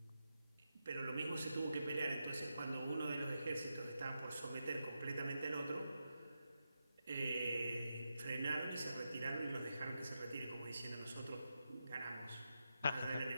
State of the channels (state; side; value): inverted; both; correlation -0.87